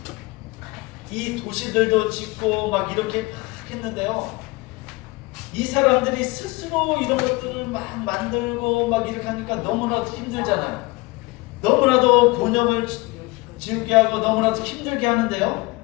이 도시들도 짓고 막 이렇게 막 했는데요. 이 사람들이 스스로 이런 것들을 막 만들고 막 이렇게 하니까 너무나도 힘들잖아요. 너무나도 곤욕을 지우게 하고 너무나도 힘들게 하는데요.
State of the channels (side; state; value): right; quieter; 23.9 dB